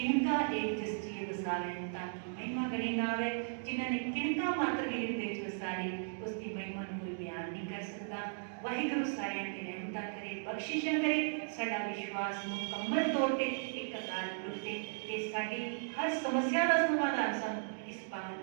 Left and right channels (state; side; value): silent; left; digital silence